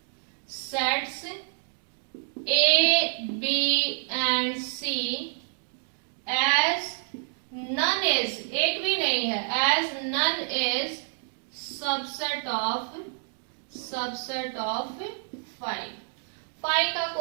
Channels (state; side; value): silent; left; digital silence